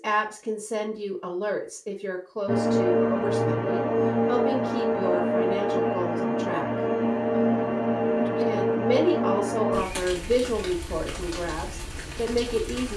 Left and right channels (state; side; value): identical; both; correlation 1.00